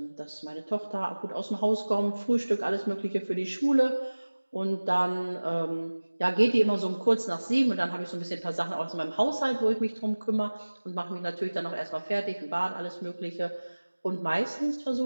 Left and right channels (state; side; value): inverted; both; correlation -1.00